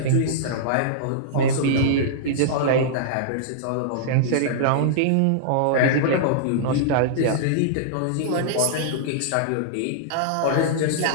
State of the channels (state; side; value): different; both; correlation -0.02